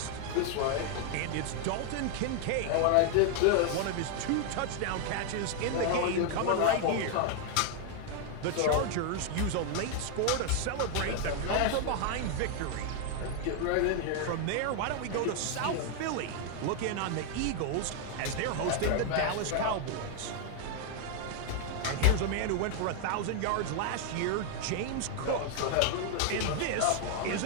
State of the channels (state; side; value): different; both; correlation 0.00